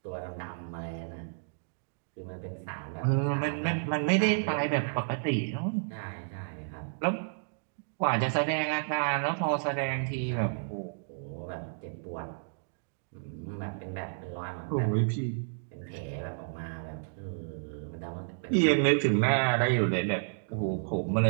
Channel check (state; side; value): silent; left; digital silence